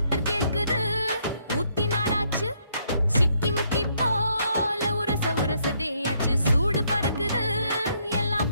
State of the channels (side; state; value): both; inverted; correlation -0.72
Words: கேக்குது ஊத்தி நாளாச்சு சிக்கி முக்கி போல உரச உரசதேயாச்சு சூடு பறக்குது எல்லாம்